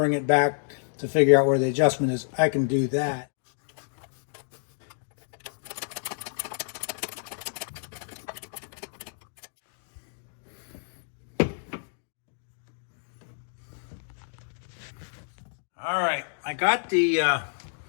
it back to figure out where the adjustment is, I can do that. All right, I got the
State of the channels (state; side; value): silent; right; digital silence